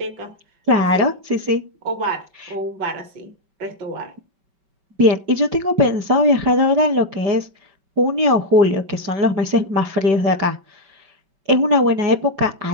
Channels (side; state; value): left; late; 5.2 ms